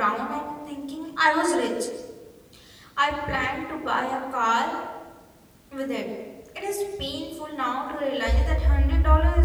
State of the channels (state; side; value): identical; both; correlation 1.00